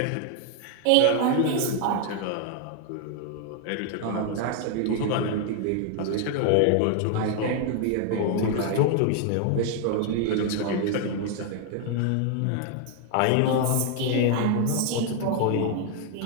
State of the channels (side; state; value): both; different; correlation 0.00